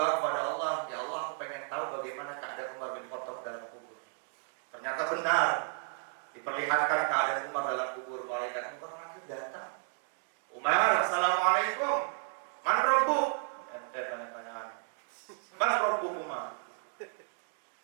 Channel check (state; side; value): silent; left; 56 dB below the other